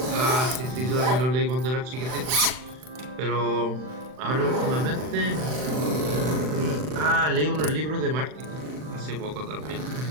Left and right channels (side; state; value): left; late; 39 ms